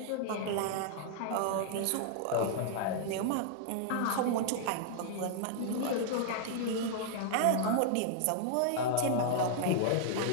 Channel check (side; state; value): both; different; correlation -0.01